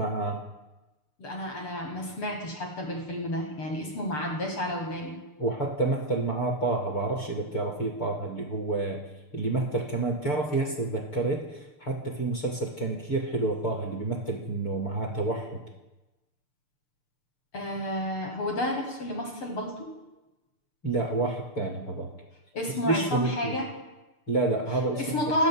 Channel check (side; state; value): right; late; 6.7 ms